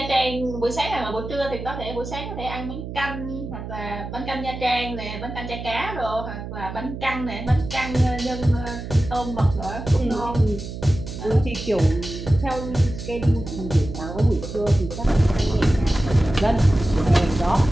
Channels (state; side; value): noise; right; hum, 9 dB below the sound